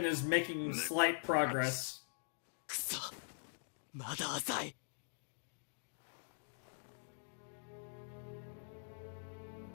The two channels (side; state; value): right; silent; digital silence